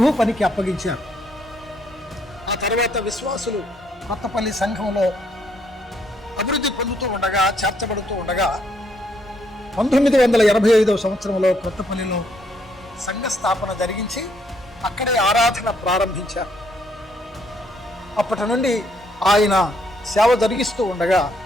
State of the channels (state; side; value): normal; both; correlation 0.71